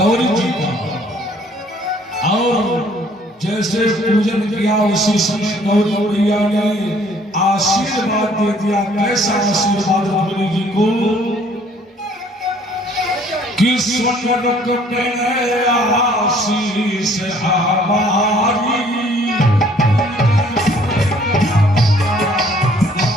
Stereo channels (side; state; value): both; normal; correlation 0.59